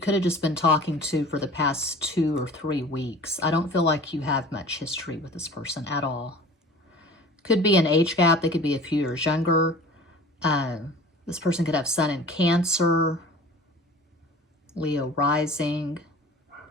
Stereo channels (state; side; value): normal; both; correlation 0.42